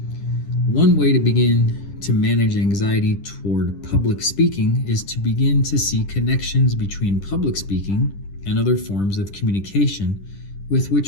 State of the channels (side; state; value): right; late; 10 ms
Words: One way to begin to manage anxiety toward public speaking is to begin to see connections between public speaking and other forms of communication with